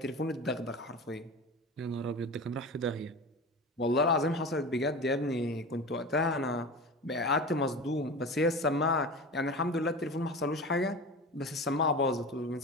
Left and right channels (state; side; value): normal; both; correlation 0.31